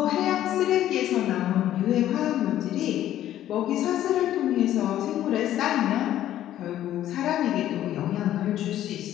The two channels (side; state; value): right; quieter; 12.5 dB